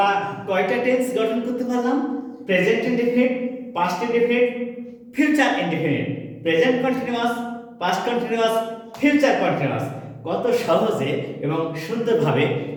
কয়টা টেন্স গঠন করতে পারলাম? Present indefinite, past indefinite, future indefinite. Present continuous, past continuous, future continuous. কত সহজে এবং সুন্দরভাবে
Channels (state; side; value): identical; both; correlation 1.00